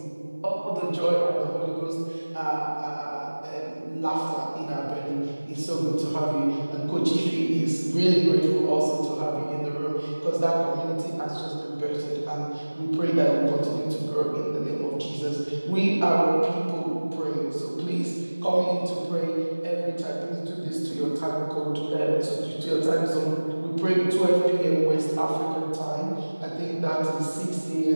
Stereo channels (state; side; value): inverted; both; correlation -1.00